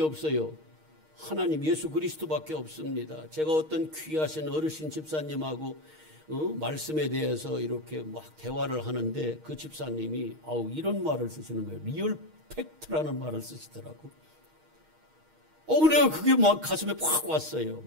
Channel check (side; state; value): left; late; 6.4 ms